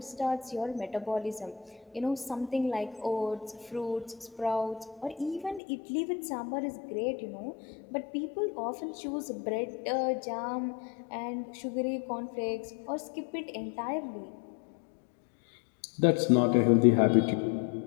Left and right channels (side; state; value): right; drops out; at 5.6 s